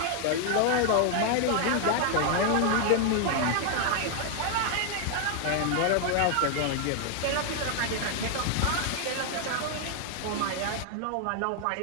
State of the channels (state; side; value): different; both; correlation 0.00